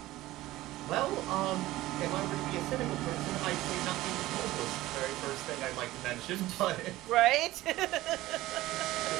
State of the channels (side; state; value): left; quieter; 16.9 dB